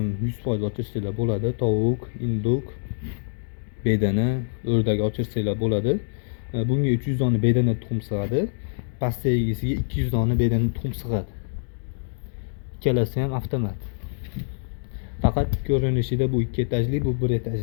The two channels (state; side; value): silent; right; digital silence